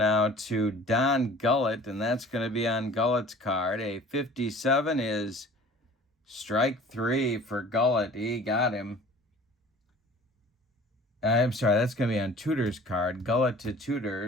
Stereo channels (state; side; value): normal; both; correlation 0.46